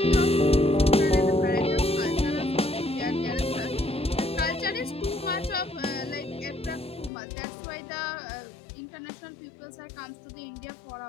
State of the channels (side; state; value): right; drops out; at 7.1 s